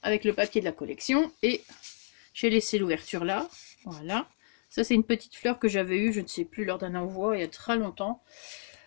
avec le papier de la collection et j'ai laissé l'ouverture là. Voilà. Ça, c'est une petite fleur que j'avais eue, je ne sais plus, lors d'un envoi il y a très longtemps.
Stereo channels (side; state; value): right; silent; digital silence